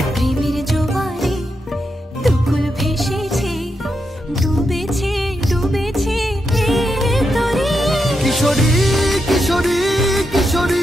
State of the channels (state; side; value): normal; both; correlation 0.85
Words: প্রেমের জোয়ারে দুকুল ভেসেছে, ডুবেছে ডুবেছে এ তরি। কিশোরী কিশোরী